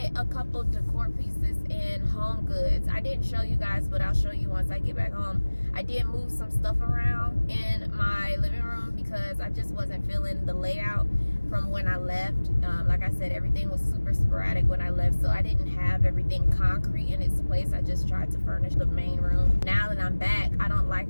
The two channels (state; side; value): inverted; both; correlation -1.00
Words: a couple decor pieces in HomeGoods. I didn't show you guys, but I'll show you once I get back home. I did move some stuff around in my living room because I just wasn't feeling the layout from when I left. Like I said, everything was super sporadic when I left, so I didn't have everything concrete in its place. I just tried to furnish the main room. Now that I'm back, I